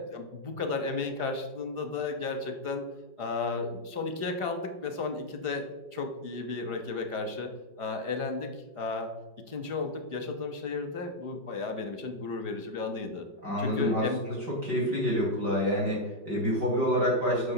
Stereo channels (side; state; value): left; late; 4.9 ms